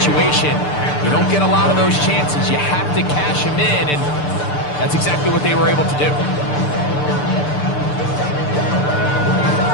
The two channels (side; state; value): right; late; 6.8 ms